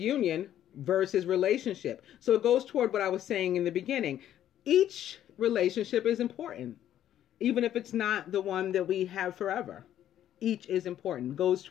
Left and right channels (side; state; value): right; quieter; 11.3 dB